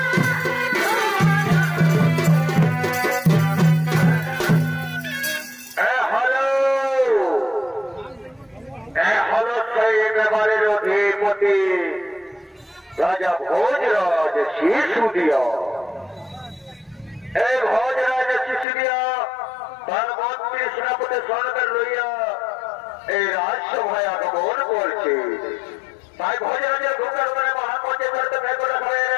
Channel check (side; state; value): right; drops out; at 18.7 s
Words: राजा भोजराज सिसोदिया। भोजराज सिसोदिया तार मंत्री सेनापति सঙ্গে লইয়া এই রাজসভায় আগমন করছে। তাই ভোজরাজের ঢোকার পরে মহামন্ত্রী করতে বের করে হবে